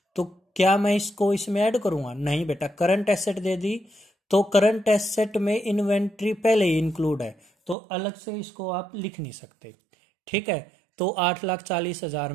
तो क्या मैं इसको इसमें ऐड करूंगा? नहीं बेटा, करंट एसेट दे दी तो करंट एसेट में इन्वेंट्री पहले ही इंक्लूड है, तो अलग से इसको आप लिख नहीं सकते। ठीक है, तो 8,40,000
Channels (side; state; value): left; drops out; at 7.8 s